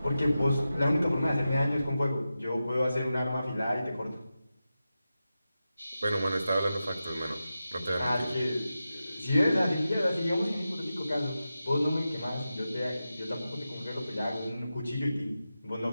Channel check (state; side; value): inverted; both; correlation -0.92